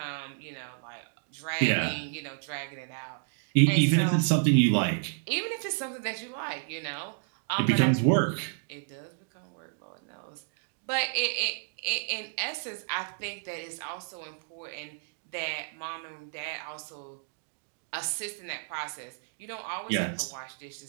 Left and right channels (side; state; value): left; silent; digital silence